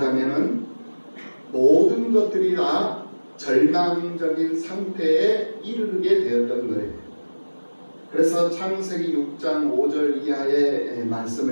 모든 것들이 다 절망적인 상태에 이르게 되었던 거예요. 그래서 창세기 6장 5절 이하의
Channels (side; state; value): both; inverted; correlation -1.00